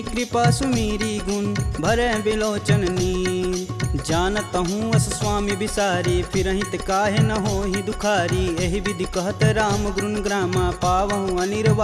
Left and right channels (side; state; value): both; identical; correlation 1.00